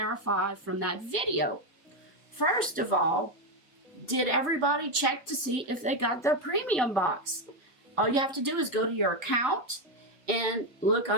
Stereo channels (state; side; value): normal; both; correlation 0.07